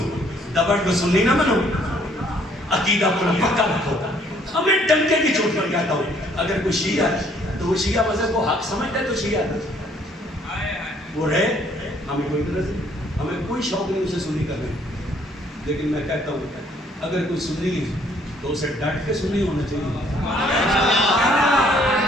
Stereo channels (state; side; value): normal; both; correlation 0.63